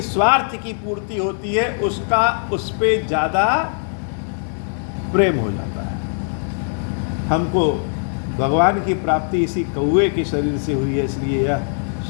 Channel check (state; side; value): silent; right; 65 dB below the other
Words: स्वार्थ की पूर्ति होती है उसका उस पे ज्यादा प्रेम हो जाता है। हमको भगवान की प्राप्ति इसी कौए के शरीर से हुई है, इसलिए यह